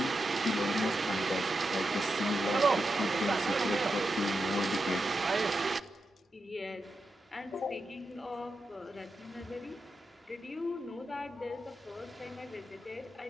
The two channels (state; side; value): normal; both; correlation 0.88